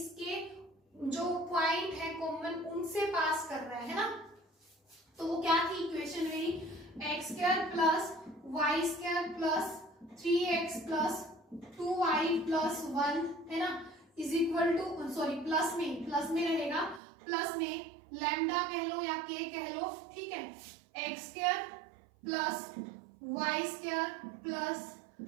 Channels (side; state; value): left; drops out; at 17.0 s